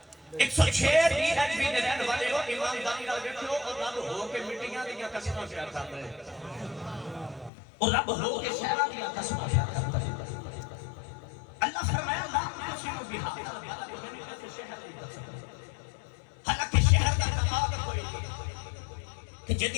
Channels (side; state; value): right; drops out; at 7.5 s